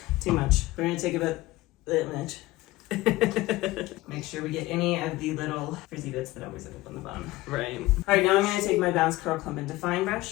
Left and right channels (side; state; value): right; quieter; 18.7 dB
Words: Too much. We're going to take about that much. Make sure we get any of the little frizzy bits that always end up on the bottom. Right. Alright, now I'm going to take my Bounce Curl Clump and Define